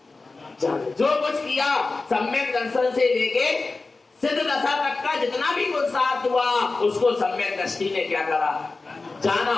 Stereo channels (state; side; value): quieter; right; 3.7 dB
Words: जाना। जो कुछ किया सम्यक दर्शन से लेके सिद्ध दशा तक का जितना भी पुरुषार्थ हुआ, उसको सम्यक दृष्टि ने क्या करा, जाना,